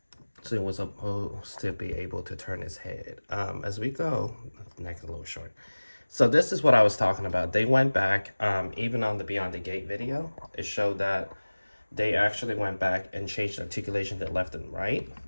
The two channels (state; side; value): inverted; both; correlation -1.00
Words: So it was supposed to be able to turn his head. As we go, neck a little short. So this is what I was talking about. They went back, even on the Beyond the Gate video, it showed that they actually went back and changed articulation to left and right